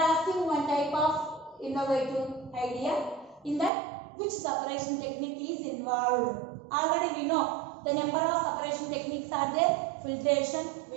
asking one type of innovative idea. In that, which separation technique is involved? Already we know the number of separation techniques are there. Filtration,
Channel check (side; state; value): left; drops out; at 3.7 s